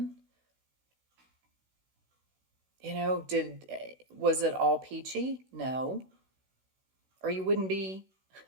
Was it all peachy? No. Or you wouldn't be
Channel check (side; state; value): left; late; 16 ms